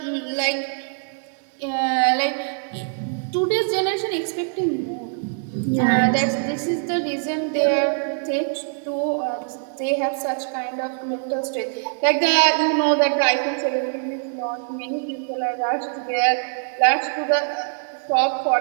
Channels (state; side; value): silent; left; 58 dB below the other